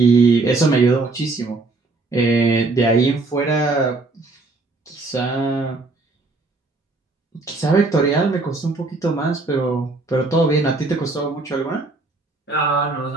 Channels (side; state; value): left; quieter; 3.5 dB